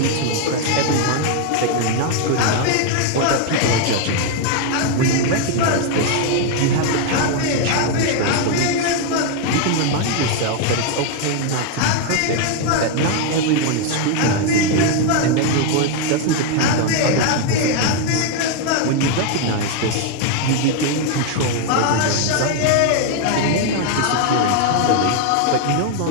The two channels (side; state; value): both; different; correlation 0.01